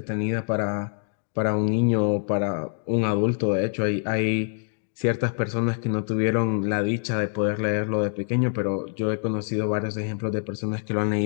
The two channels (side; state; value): right; silent; 62 dB below the other